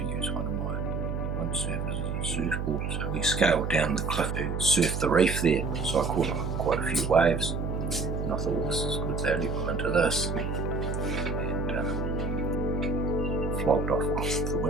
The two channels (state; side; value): noise; right; hum, 2 dB below the sound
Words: use one of my windsurfers as a surfboard. So we scaled down the cliff to surf the reef there. So I caught quite a few waves, and I thought, well, this is good value, I'm into this. And flogged off the